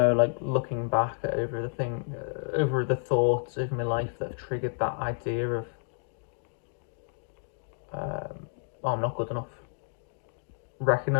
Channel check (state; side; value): silent; right; digital silence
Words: looking back over the thoughts over my life that have triggered that idea of, oh, I'm not good enough.